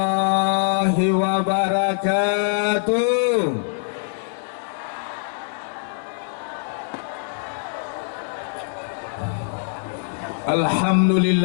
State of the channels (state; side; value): silent; right; digital silence